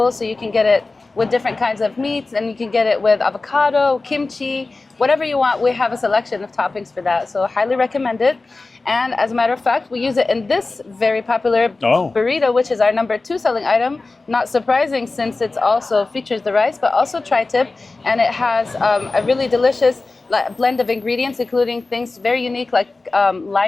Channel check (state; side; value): quieter; right; 3.5 dB